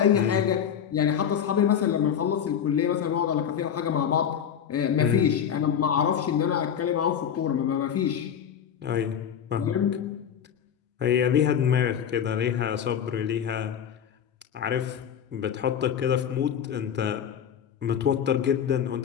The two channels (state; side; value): quieter; right; 8.6 dB